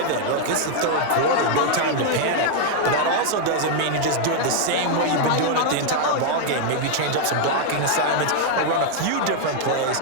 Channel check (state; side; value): different; both; correlation -0.01